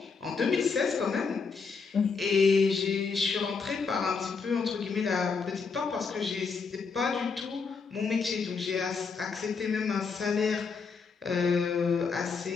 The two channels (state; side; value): quieter; right; 5.1 dB